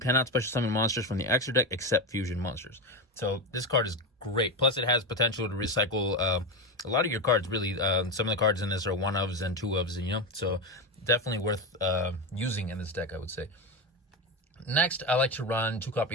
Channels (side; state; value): both; normal; correlation 0.16